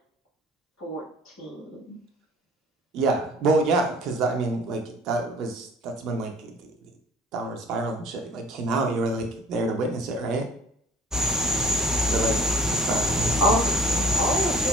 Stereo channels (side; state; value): both; normal; correlation 0.48